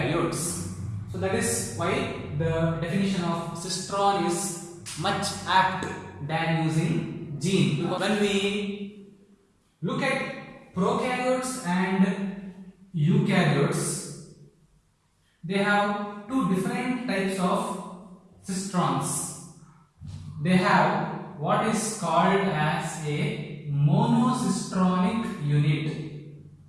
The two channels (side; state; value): both; identical; correlation 1.00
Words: So that is why the definition of Sitron is much apt than using gene. When we look at prokaryotes and eukaryotes, they have two different types of cistrons. They have what is called as a monocistronic unit